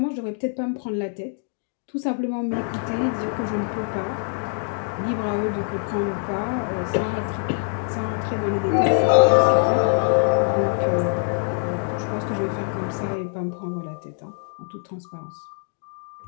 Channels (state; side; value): silent; right; 61 dB below the other